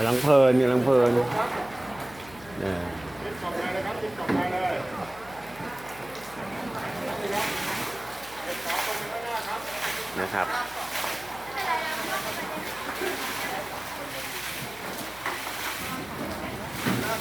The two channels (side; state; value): left; noise; hum, 20 dB below the sound